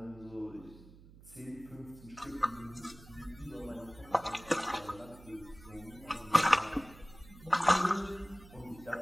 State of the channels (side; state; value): right; noise; hum, 20 dB below the sound